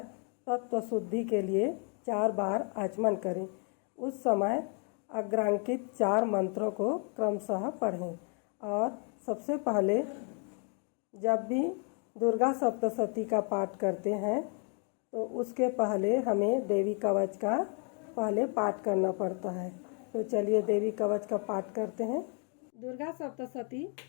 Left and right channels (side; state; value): right; quieter; 39.2 dB